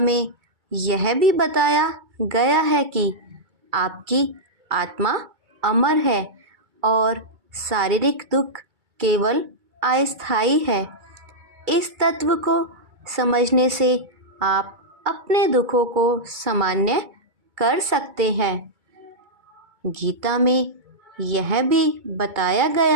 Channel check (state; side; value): late; left; 2.2 ms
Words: यह भी बताया गया है कि आपकी आत्मा अमर है और शारीरिक दुख केवल अस्थायी है। इस तत्व को समझने से आप अपने दुखों को सामान्य कर सकते हैं। गीता में यह भी बताया